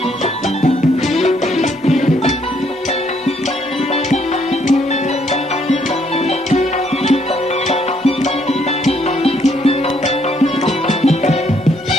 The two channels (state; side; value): normal; both; correlation 0.69